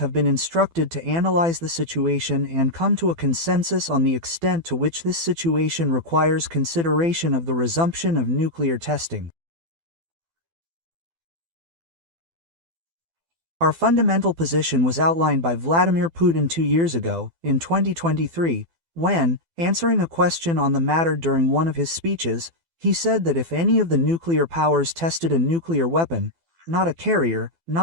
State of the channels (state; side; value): late; left; 12 ms